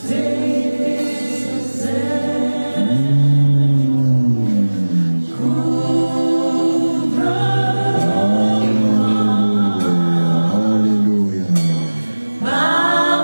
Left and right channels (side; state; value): both; inverted; correlation -1.00